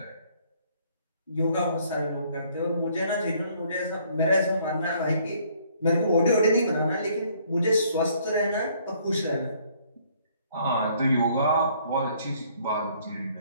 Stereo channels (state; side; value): inverted; both; correlation -0.63